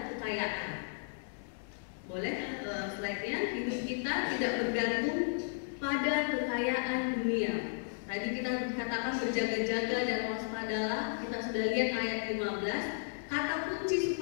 kekayaan. Boleh slide-nya, hidup kita tidak bergantung pada kekayaan dunia. Tadi kita katakan berjaga-jaga dan waspadalah, kita sudah lihat ayat 15. Kata kunci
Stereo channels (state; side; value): silent; right; digital silence